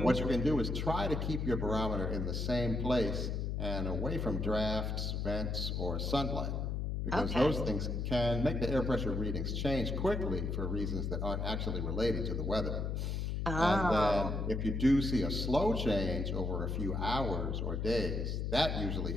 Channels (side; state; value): left; noise; hum, 1 dB below the sound